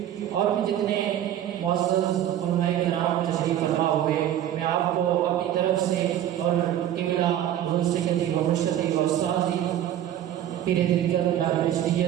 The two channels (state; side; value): quieter; left; 11.5 dB